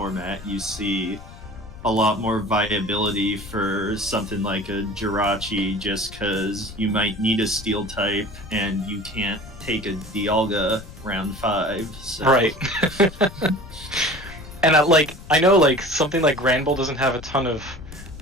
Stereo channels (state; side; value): noise; left; rumble, 16 dB below the sound